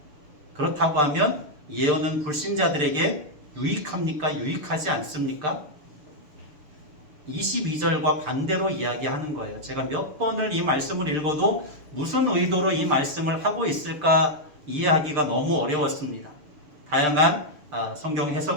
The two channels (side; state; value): left; late; 6.7 ms